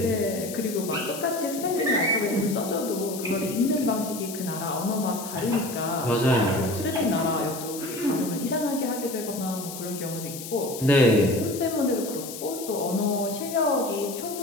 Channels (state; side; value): noise; left; hiss, 10 dB below the sound